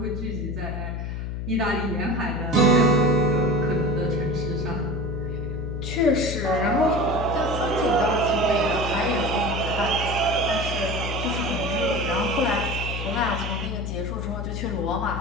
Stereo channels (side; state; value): left; noise; hum, 4 dB below the sound